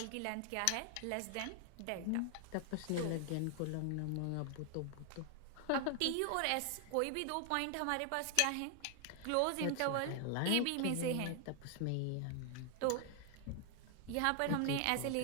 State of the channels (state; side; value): different; both; correlation 0.00